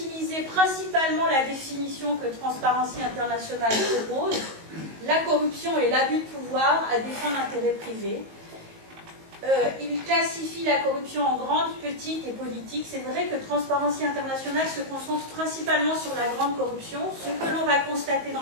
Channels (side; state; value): left; late; 19 ms